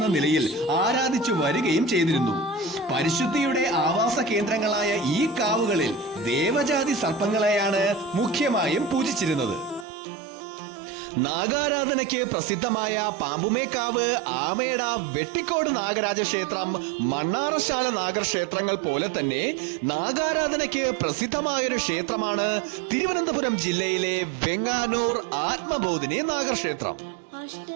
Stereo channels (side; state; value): left; drops out; at 9.9 s